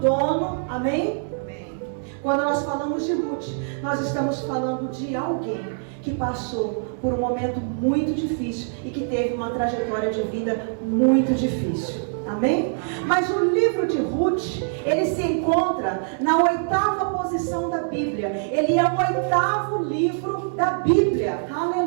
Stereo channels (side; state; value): left; silent; digital silence